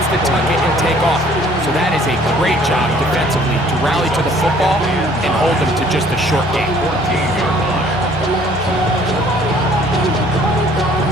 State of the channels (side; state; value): both; normal; correlation 0.57